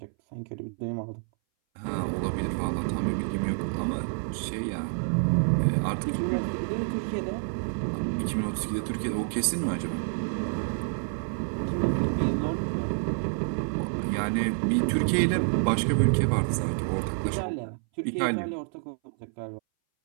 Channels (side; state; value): left; silent; 59 dB below the other